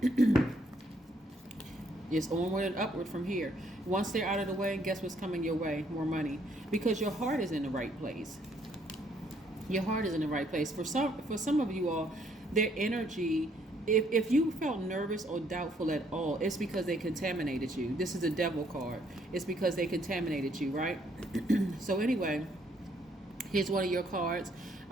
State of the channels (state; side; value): normal; both; correlation 0.68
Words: it's onward and upward from here. Once they're out of the way, guess what's coming your way? More money. Because your heart is in the right place. Your heart is in the right place. For some of you all, their energy, if you felt nervous or doubtful at all, it's because they contaminated you. This is a devil card. It's because they contaminated you, right? So anyway, here's one of your cards.